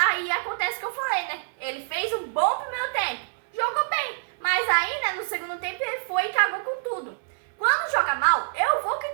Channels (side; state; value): left; silent; digital silence